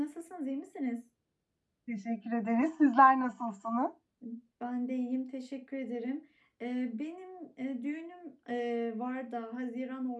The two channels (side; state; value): both; identical; correlation 1.00